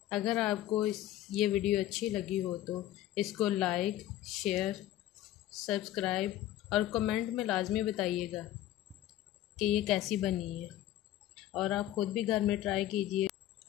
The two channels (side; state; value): right; quieter; 13.6 dB